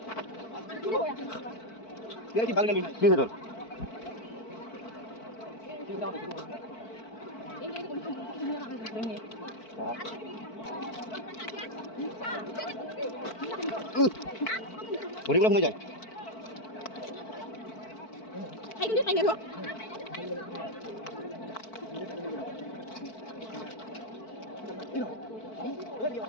তোর ভরিগুলো হয়ে যায়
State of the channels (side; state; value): right; late; 4.5 ms